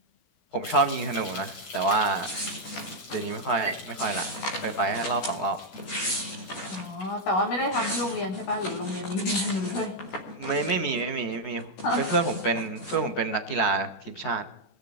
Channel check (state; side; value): late; right; 16 ms